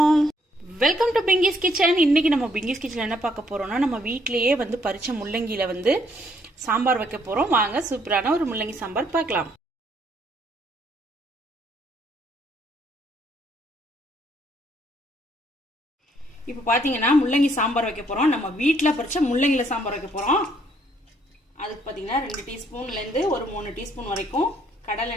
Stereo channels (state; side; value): normal; both; correlation 0.68